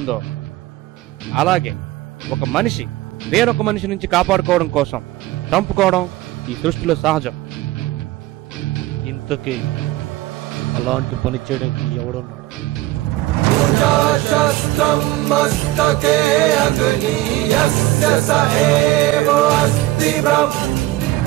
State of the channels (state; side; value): quieter; left; 17.1 dB